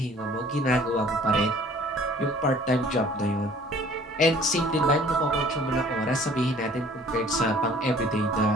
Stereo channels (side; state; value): both; normal; correlation 0.53